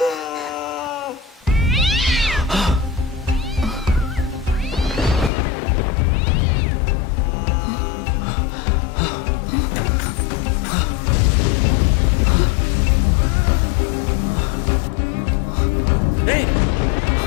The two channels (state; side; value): drops out; right; at 5.3 s